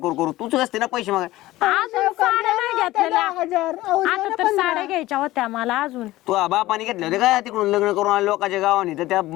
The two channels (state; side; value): quieter; right; 17.1 dB